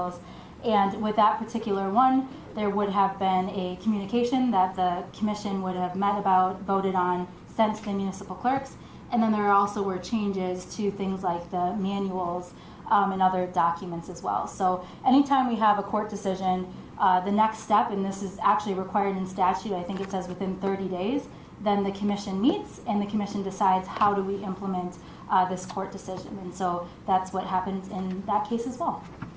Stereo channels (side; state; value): both; identical; correlation 1.00